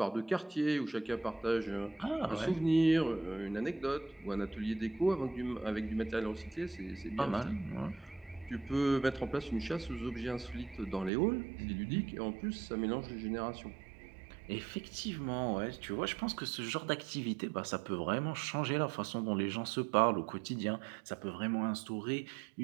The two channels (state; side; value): drops out; left; at 11.1 s